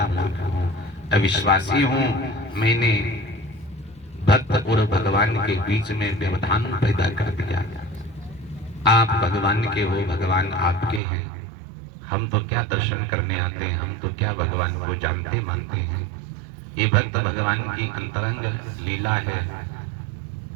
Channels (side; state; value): left; drops out; at 11.0 s